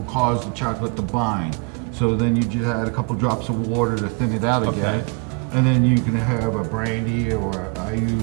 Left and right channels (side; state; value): left; quieter; 33.5 dB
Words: cause the chocolate to bind. So then you just add a couple drops of water to thin it out again. Okay. And then you can have a brandy, or I